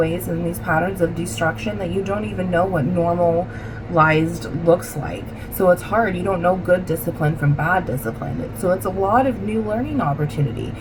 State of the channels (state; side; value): identical; both; correlation 1.00